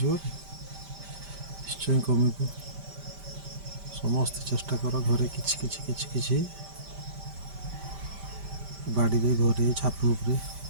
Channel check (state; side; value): late; left; 5.1 ms